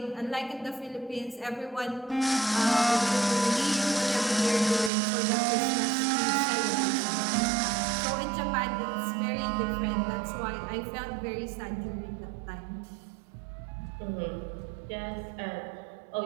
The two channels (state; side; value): drops out; left; at 4.9 s